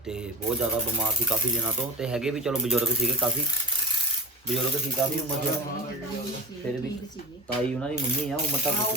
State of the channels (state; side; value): normal; both; correlation 0.29